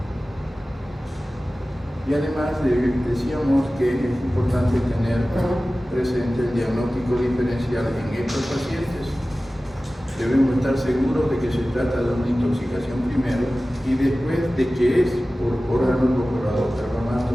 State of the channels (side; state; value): both; normal; correlation 0.96